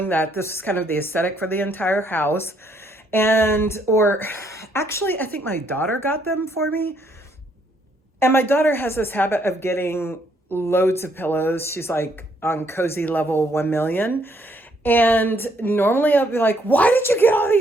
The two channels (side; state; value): both; normal; correlation 0.70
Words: that this was kind of the aesthetic for the entire house. Actually, I think my daughter got them for me. And my daughter has this habit of getting loads of pillows. She's like on cozy level 1 million. And normally I'll be like, why did you get all